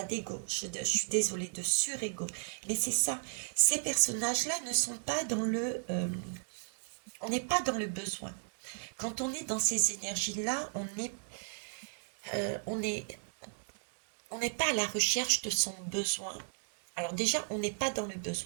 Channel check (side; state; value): left; silent; digital silence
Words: d'ego, je suis désolée, de surego. Mais c'est ça. Ces personnages-là ne sont pas dans le... on n'est pas dans le besoin. Quand on est dans ces énergies-là, on est, on n'est pas à la recherche de son besoin. Alors déjà, on n'est pas dans le